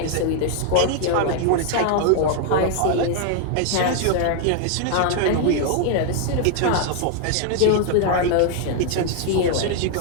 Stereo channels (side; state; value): both; different; correlation 0.00